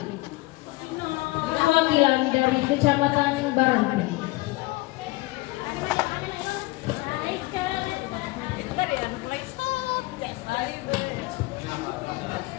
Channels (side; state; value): right; quieter; 21.4 dB